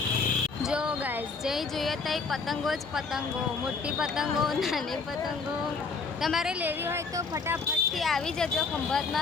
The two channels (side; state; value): right; quieter; 4.6 dB